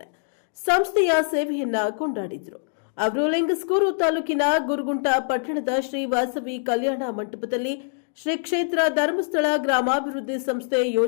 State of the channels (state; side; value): silent; right; digital silence